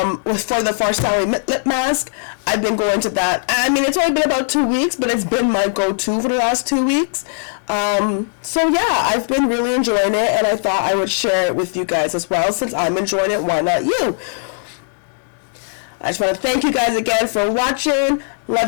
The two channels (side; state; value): right; silent; digital silence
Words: the Farsali lip mask, I've been going to that. I mean, it's only been about 2 weeks, but it's been my go-to for the last 2 weeks. So yeah, I've been really enjoying it, and I thought I would share it with you guys as well. Since I'm enjoying it, why not you? I just want to thank you guys again for watching.